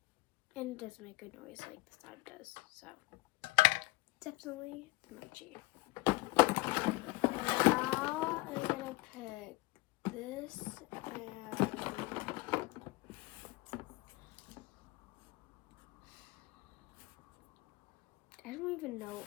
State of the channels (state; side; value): quieter; right; 21.6 dB